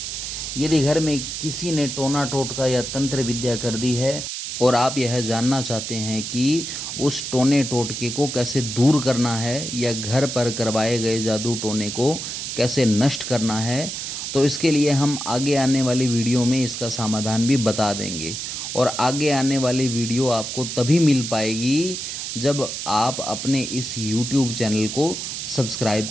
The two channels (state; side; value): noise; right; hiss, 5 dB below the sound